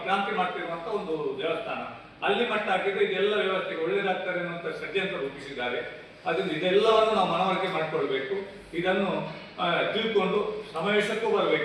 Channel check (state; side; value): identical; both; correlation 1.00